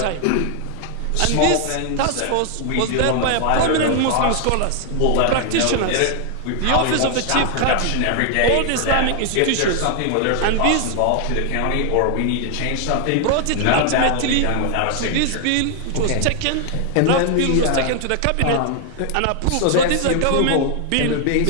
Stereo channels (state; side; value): different; both; correlation 0.00